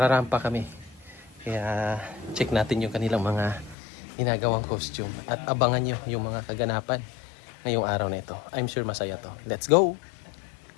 kami. Kaya check natin yung kanilang mga ginagawang costume. At abangan nyo yung mga kaganapan ngayong araw na ito. I'm sure masaya to. Let's go!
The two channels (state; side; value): drops out; right; at 3.8 s